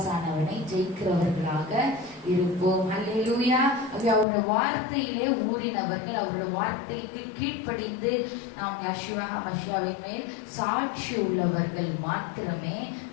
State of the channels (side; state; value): right; drops out; at 4.2 s